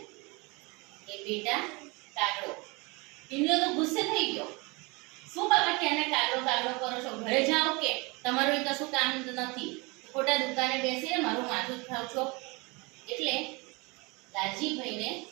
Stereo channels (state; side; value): quieter; left; 26.9 dB